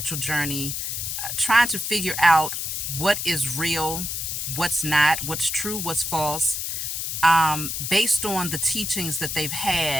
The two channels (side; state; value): left; noise; hiss, 3 dB below the sound